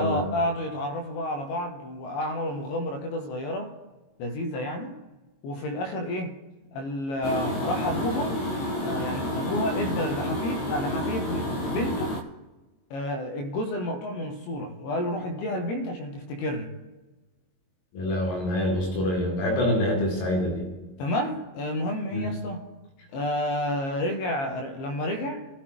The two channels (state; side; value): late; right; 22 ms